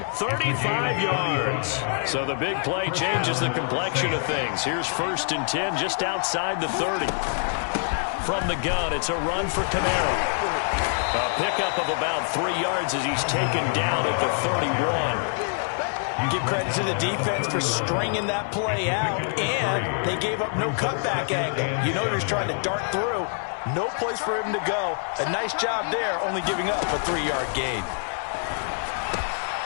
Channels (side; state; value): right; silent; 61 dB below the other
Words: 35 yards. So the big play changes the complexion of things. Here's 1st and 10 just outside the 30. From the gun, it's a run for Camara. A pickup of about 3 yards as he's taken down at the 31. Give credit to the defense for stringing that play out, and they gave up no cutback angle. You know he's trying to dart through. No place for him to go. A nice job there, only giving up a 3-yard gain.